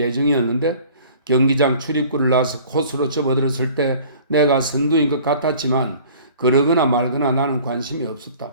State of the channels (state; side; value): inverted; both; correlation -0.48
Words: 경기장 출입구를 나서 코스로 접어들었을 때 내가 선두인 것 같았지만 그러거나 말거나 나는 관심이